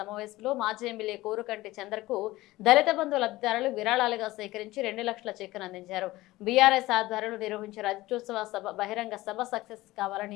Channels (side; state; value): right; quieter; 18.3 dB